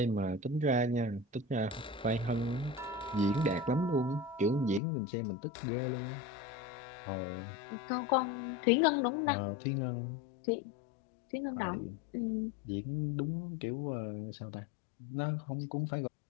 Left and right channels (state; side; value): drops out; right; at 4.8 s